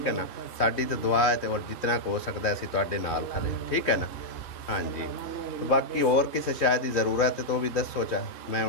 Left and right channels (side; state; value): right; late; 3.1 ms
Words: है ना। साडी तो दुआ है तो और जितना हो सकता है असीं तुहाडे नाल खड़े, ठीक है ना। हाँ जी, बाकी और किसी शायद की जरूरत है तो भी दसो चा मैं